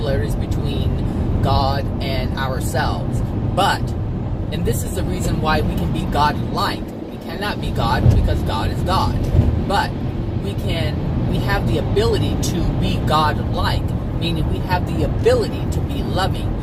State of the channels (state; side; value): identical; both; correlation 1.00